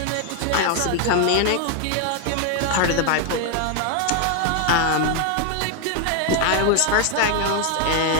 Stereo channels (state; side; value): different; both; correlation 0.01